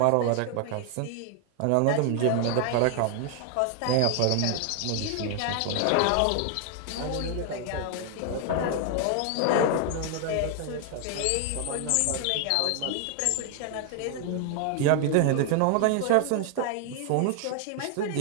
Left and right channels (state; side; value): different; both; correlation 0.00